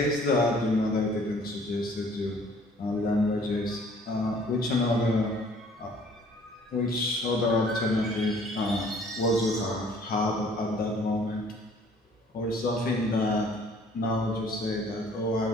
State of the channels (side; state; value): both; normal; correlation 0.56